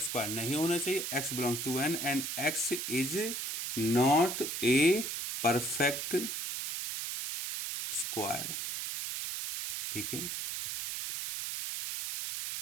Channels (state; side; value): noise; right; hiss, 4 dB below the sound